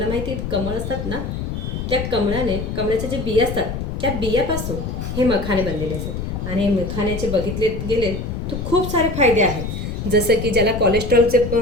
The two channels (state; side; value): noise; left; rumble, 5 dB below the sound